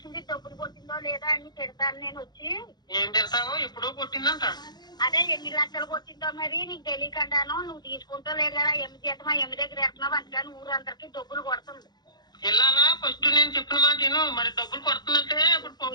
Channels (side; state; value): right; late; 0.20 ms